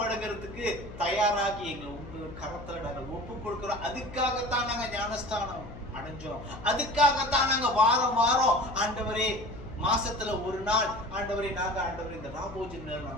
தயாராகி எங்களை உங்க கரத்துல நாங்கள் ஒப்பு கொடுக்கிறோம். அதுக்காகத்தான் நாங்க ஞானஸ்தானம் அடைஞ்சோம். அதுக்காகத்தான் நாங்க வாரம் ஆண்டவரே மாசத்துல ஒரு நாள் ஆண்டவரே நாங்க ஆண்டவரே இந்த ராபோஜன்ல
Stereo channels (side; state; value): left; noise; hum, 14 dB below the sound